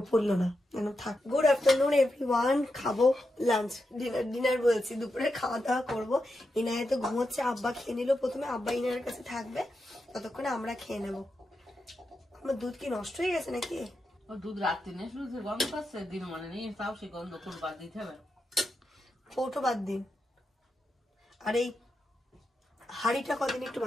পরলো না, কেন থাক। গুড আফটারনুন এভরিওয়ান, খাবো লাঞ্চ, ডিনার বলছি, দুপুরে খাওয়া দাওয়া করবো। ইনায় তো ঘুমোচ্ছে, আব্বা খেয়ে নিল প্রথমে, আব্বা ইনার কাছে থাকবে, ততক্ষণে আমরা খেয়ে নেবো। আমার দুধ কি নষ্ট হয়ে গেছে নাকি? ও দুধ রাত্রি নেই, শুধু গন্ধ পাচ্ছে, দিন মানে নেই, তাও সে গন্ধ কোন বাদ দিতে হবে। কৌটো বাদ দিন, আর এই হাড়িটা কদিন একটু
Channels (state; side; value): normal; both; correlation 0.87